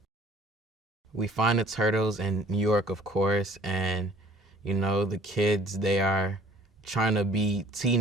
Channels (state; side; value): normal; both; correlation 0.53